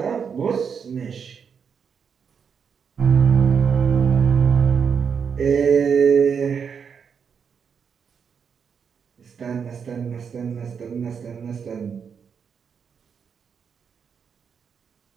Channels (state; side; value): quieter; left; 6.7 dB